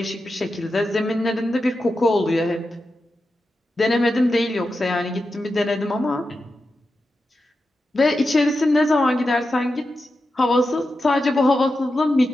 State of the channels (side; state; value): both; normal; correlation 0.90